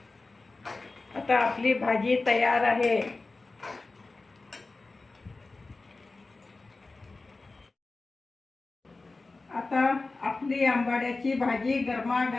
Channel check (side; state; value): right; quieter; 3.5 dB